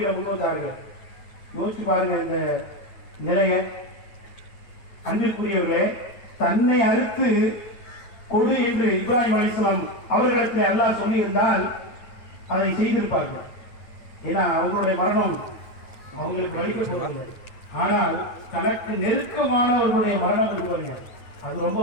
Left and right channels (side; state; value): right; late; 9.1 ms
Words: முன்வந்தார்கள். யோசிச்சு பாருங்க இந்த நிலைய. அன்பிற்குரியவர்களே, தன்னை அறுத்து கொடு என்று இப்ராஹிம் அலைஹிஸ்ஸலாம் அவர்களிடத்தில் அல்லாஹ் சொல்லியிருந்தால் அதை செய்திருப்பார்கள். ஏன்னா அவங்களுடைய மரணம் அவங்களுக்கு வலிக்க போவதில்லை. ஆனால் தனக்கு நெருக்கமானவர்களுடைய மரணம் இருப்பாங்க, அது ரொம்ப